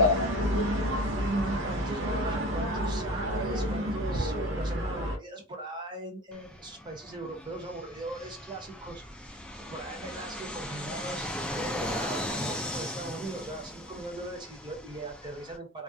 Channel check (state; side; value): normal; both; correlation 0.37